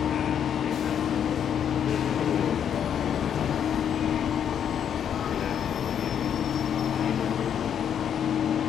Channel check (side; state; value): right; quieter; 8.7 dB